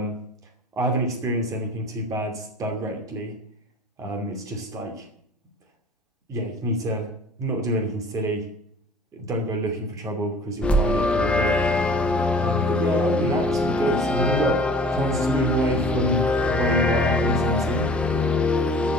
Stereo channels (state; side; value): normal; both; correlation 0.46